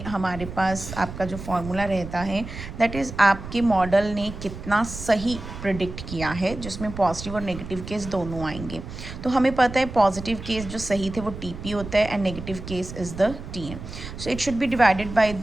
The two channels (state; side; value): noise; right; rumble, 10 dB below the sound